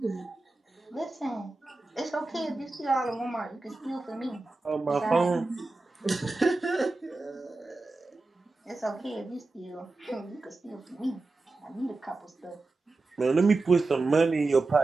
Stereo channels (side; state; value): left; quieter; 3.4 dB